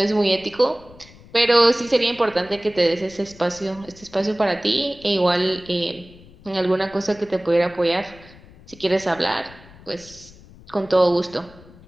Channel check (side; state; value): left; noise; rumble, 22 dB below the sound